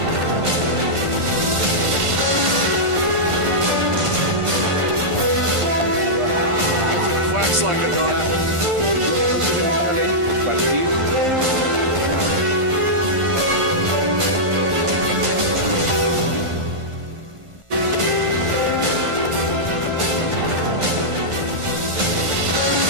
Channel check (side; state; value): left; late; 1.5 ms